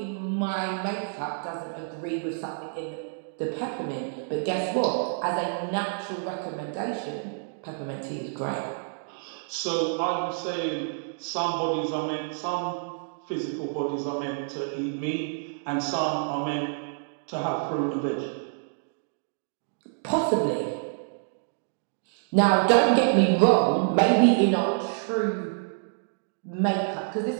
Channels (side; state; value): left; silent; digital silence